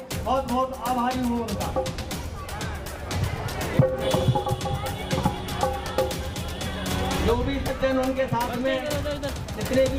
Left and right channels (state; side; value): identical; both; correlation 1.00